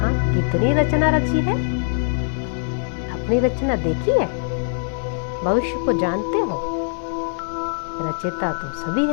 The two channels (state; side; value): silent; right; 64 dB below the other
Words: कितनी रचना रची है? अपनी रचना देखी है? भविष्य को जानते हो? रचयिता तो सभी